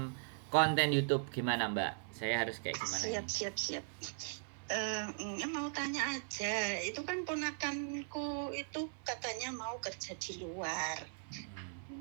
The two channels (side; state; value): left; silent; 52 dB below the other